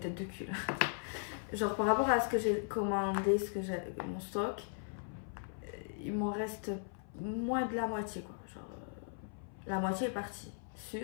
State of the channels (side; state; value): right; silent; 53 dB below the other